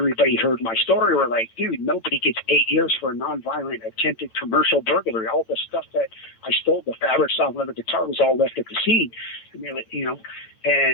heard my story. Were like, dude, nobody gets 8 years for a nonviolent attempted commercial burglary. All the stuff that I stole, the fabric, soft leather guitar, was all left at the scene.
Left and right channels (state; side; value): late; right; 8.9 ms